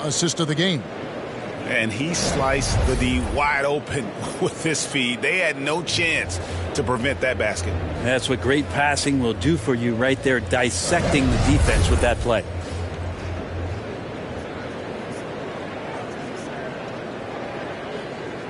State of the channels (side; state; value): both; identical; correlation 1.00